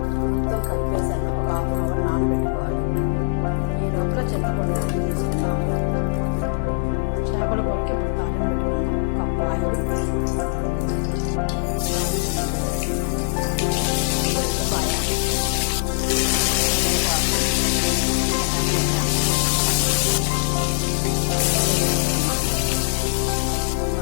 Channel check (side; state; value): right; silent; digital silence